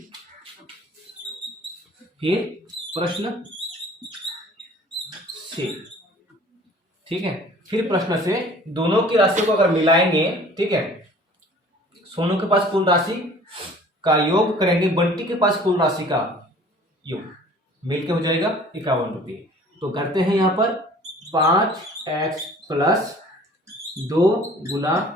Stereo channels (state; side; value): normal; both; correlation 0.49